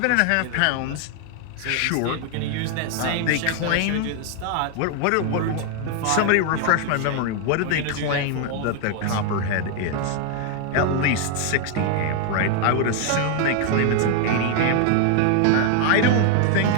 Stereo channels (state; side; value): different; both; correlation 0.00